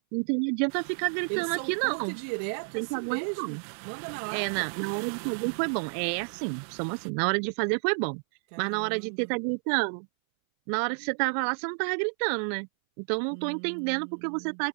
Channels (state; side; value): silent; left; 58 dB below the other